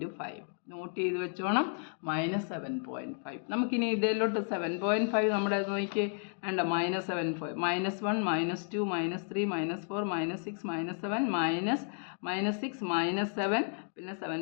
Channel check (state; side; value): silent; right; 56 dB below the other